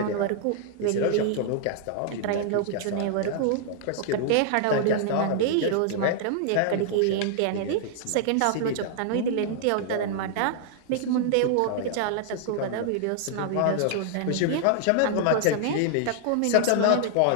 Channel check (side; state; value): both; different; correlation -0.01